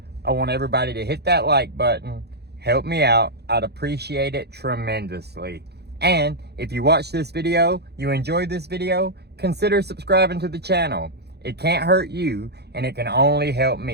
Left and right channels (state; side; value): late; left; 0.48 ms